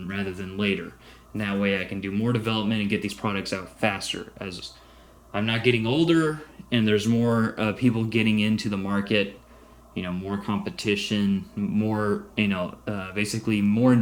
rather than later. And that way I can do more development and get these products out faster, as I'm not getting older and there's more people getting into the market, more competition, more, basically more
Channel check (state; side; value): identical; both; correlation 1.00